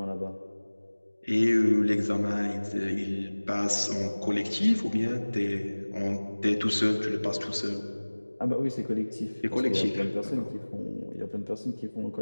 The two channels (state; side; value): inverted; both; correlation -1.00